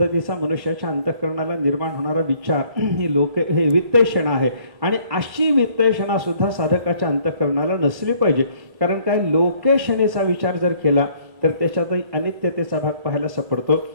मनुष्याच्या अंतःकरणाला निर्माण होणारा विचार हे वित्तेषणा आहे. आणि अशी वित्तेषणा सुद्धा साधकाच्या अंतःकरणाला नसली पाहिजे. कारण काय, लोकेषणेचा विचार जर केला तर त्याच्यातही अनित्यतेचा भाग पाहायला सापडतो.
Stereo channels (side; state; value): left; late; 1.1 ms